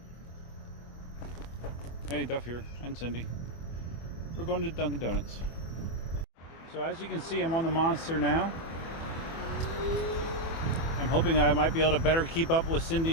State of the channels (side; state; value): right; late; 24 ms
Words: Hey, Duff here, and Cindy. We're going to Dunkin' Donuts. So as you can see, I'm on the Monster now. I'm hoping I might be able to better keep up with